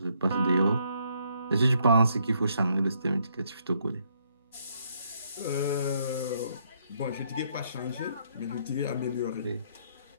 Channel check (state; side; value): inverted; both; correlation -0.71